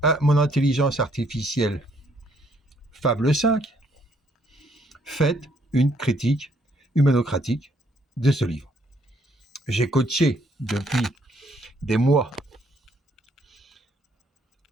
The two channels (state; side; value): normal; both; correlation 0.68